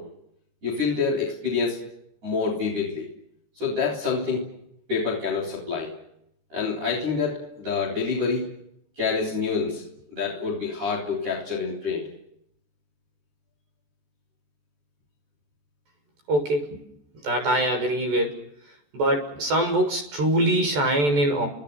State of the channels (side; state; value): left; late; 14 ms